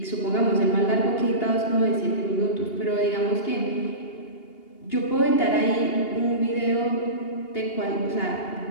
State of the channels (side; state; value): right; late; 2.8 ms